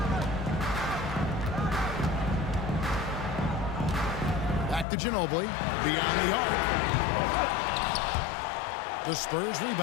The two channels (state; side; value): drops out; right; at 4.9 s